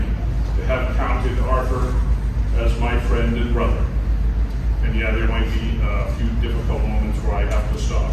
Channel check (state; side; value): identical; both; correlation 1.00